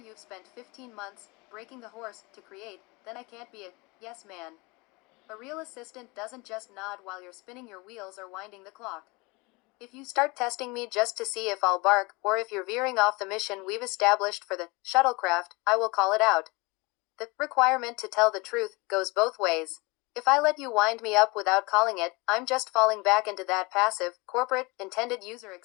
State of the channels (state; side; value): quieter; right; 25.9 dB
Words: spent 15 months breaking the horse to create, then I can't be a yes man. A real assistant doesn't just nod while you're spinning your wheels or winding the clock. If you start testing me just to see if I'll bark, or if you're veering off the mission we've established for the shuttlecraft, I will call it out. The requirement to tell the truth goes both ways. If I let you wind me up without calling it, I'm just falling back into that passive, corporate, intended user